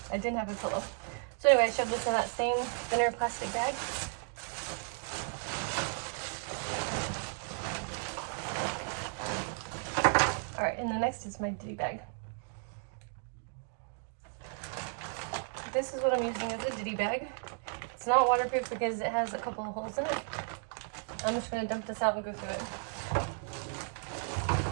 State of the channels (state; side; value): silent; left; 55 dB below the other